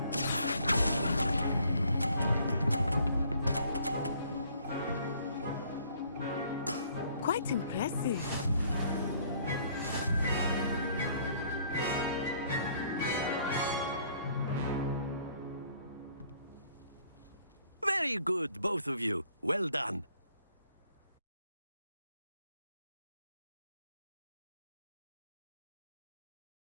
Quite impressive. Very good, both of you. Well done.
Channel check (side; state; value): both; inverted; correlation -0.62